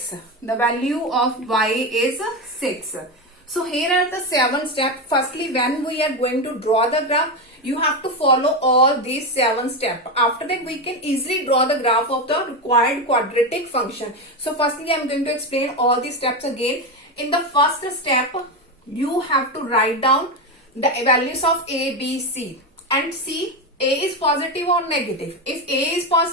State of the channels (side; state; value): both; normal; correlation 0.13